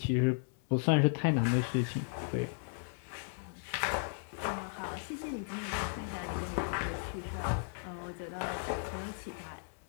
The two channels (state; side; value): silent; right; 54 dB below the other